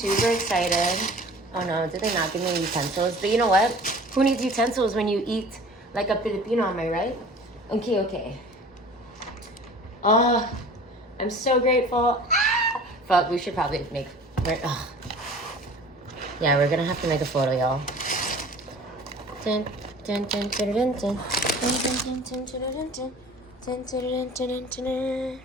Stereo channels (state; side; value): normal; both; correlation 0.44